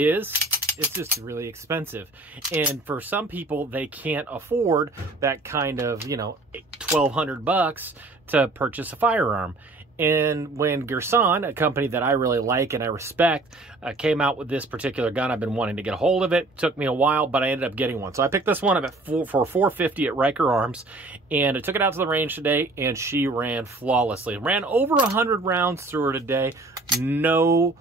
it's just really expensive. And for some people, they can't afford that kind of, $1,200 to purchase a firearm. And when Girsan, a company that I really like and I respect, came out with this particular gun, I've been wanting to get a hold of it. Took me a while, but I ended up getting one. So I picked this one up for $450 at Riker Arms, and I took it out to the range today, and she ran flawlessly. Ran over 100 rounds through her today. No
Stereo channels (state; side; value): quieter; left; 3.0 dB